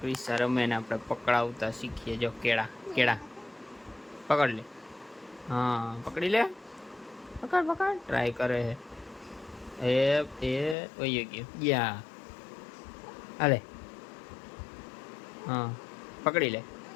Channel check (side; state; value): right; drops out; at 10.8 s